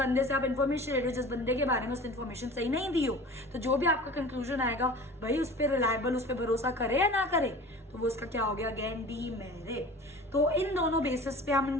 से आप इन्फॉर्मेशन ले रहे हो, जिस बंदे के बारे में उसने इन्फॉर्मेशन सही नहीं दी हो, तो जो भी आपका कंक्लूजन आएगा भाई उस पर रिलायबल, उस पर भरोसा करे या ना करे, तो वो उसका क्या हो गया? Again demerit. तो इन दोनों बेसिस पे हम इन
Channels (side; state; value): both; normal; correlation 0.40